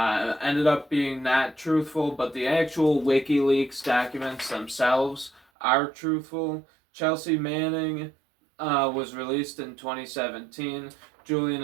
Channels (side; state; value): left; drops out; at 5.4 s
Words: ended up being not truthful, but the actual WikiLeaks documents themselves are truthful. Chelsea Manning was released in 2017. Julian